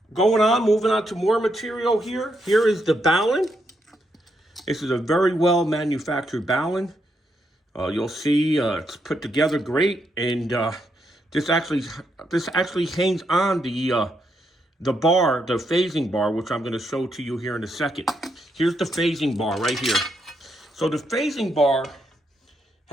Moving on to more material here. Here is the Balun. This is a very well manufactured Balun. You'll see it's put together great, and this actually hangs on the bar, the phasing bar, which I'm going to show to you here in a second. Here's the phasing bar right here. So the phasing bar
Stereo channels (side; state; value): both; normal; correlation 0.79